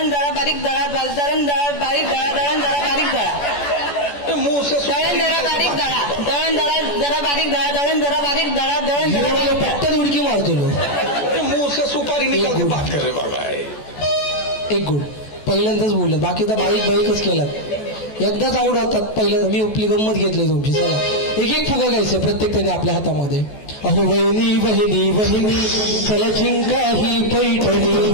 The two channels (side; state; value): right; late; 14 ms